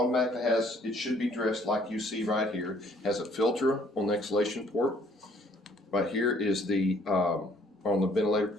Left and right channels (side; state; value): both; normal; correlation 0.61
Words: has, it should be dressed like you see right here. It has a filter on the exhalation port. Right here is the, on the ventilator